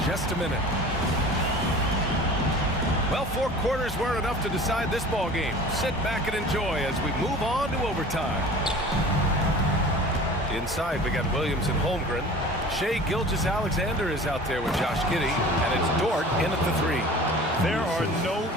just a minute. Well, 4 quarters weren't enough to decide this ball game. Sit back and enjoy as we move on to overtime. Inside, we got Williams and Holmgren. Shai Gilgeous-Alexander is out there with Josh Giddey, and it's Dort in at the 3. There are no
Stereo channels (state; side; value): normal; both; correlation 0.42